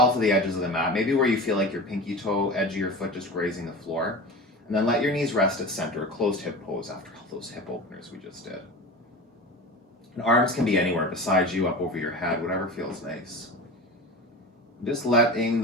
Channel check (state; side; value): normal; both; correlation 0.31